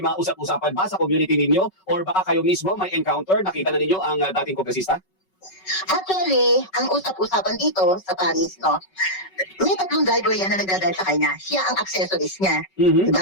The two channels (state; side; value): late; right; 5.3 ms